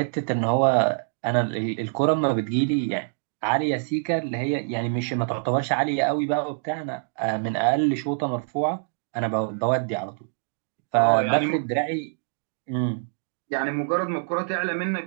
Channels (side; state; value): left; silent; digital silence